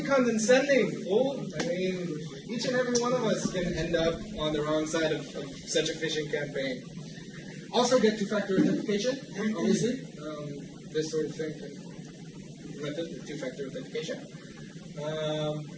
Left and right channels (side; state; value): both; identical; correlation 1.00